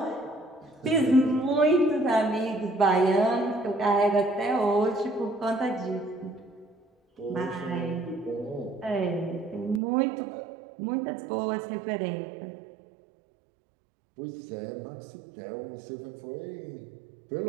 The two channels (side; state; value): left; drops out; at 9.8 s